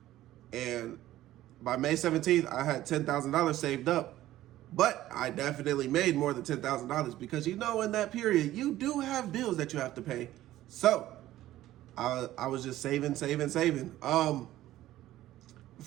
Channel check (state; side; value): quieter; left; 14.6 dB